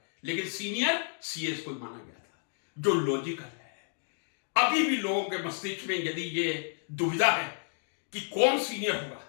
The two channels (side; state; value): right; silent; 57 dB below the other